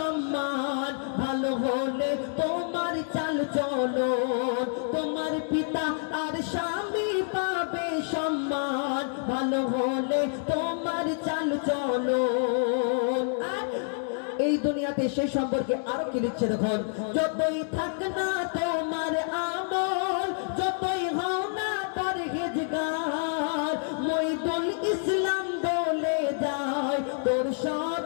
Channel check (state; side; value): silent; right; 59 dB below the other